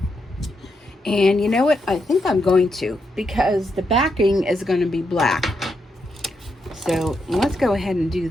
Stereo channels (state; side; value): normal; both; correlation 0.82